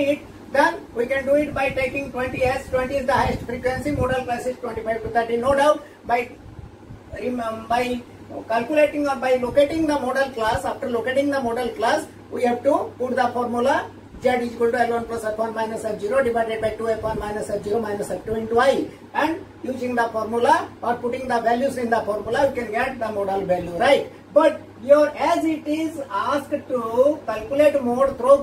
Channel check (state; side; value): identical; both; correlation 1.00